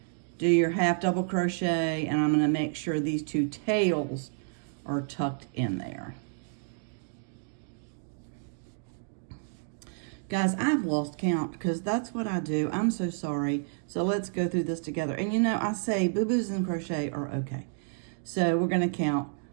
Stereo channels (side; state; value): left; silent; digital silence